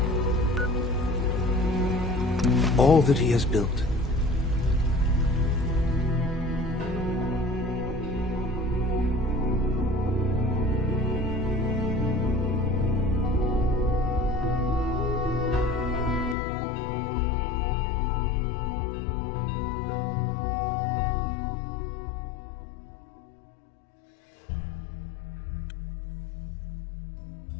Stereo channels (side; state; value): right; drops out; at 16.4 s